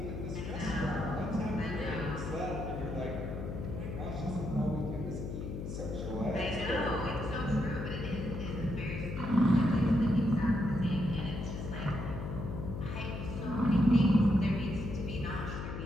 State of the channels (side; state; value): left; noise; hum, 6 dB below the sound